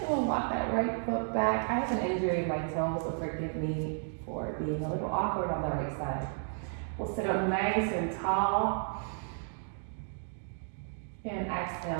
we'll walk that right foot back. I have an injury in my toe, so forgive me for being a little awkward on the right side. We'll sit up nice and tall. And exhale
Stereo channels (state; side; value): silent; left; 56 dB below the other